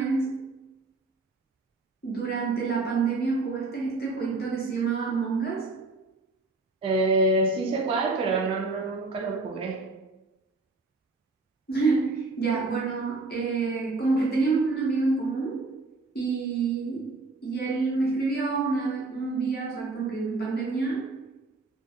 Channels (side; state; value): left; quieter; 3.4 dB